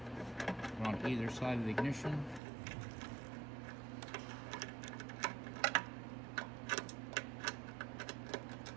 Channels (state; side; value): drops out; left; at 2.4 s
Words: On either side of the ignition.